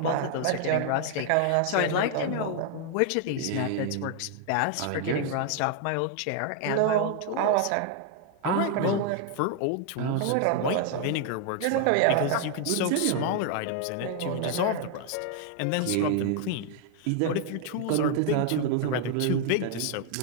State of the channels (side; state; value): both; different; correlation 0.00